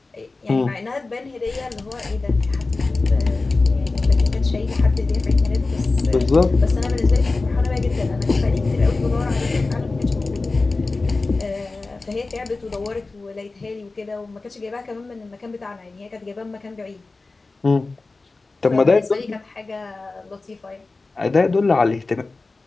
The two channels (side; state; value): right; quieter; 3.6 dB